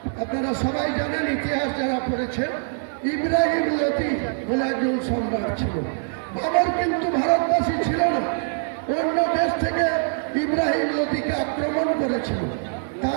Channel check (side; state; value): left; silent; digital silence